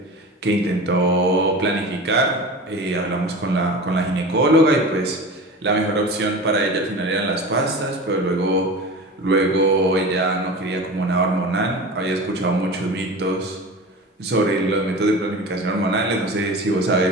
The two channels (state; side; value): normal; both; correlation 0.32